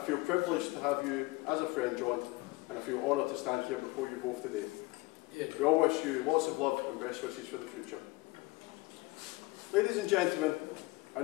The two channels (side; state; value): right; quieter; 21.7 dB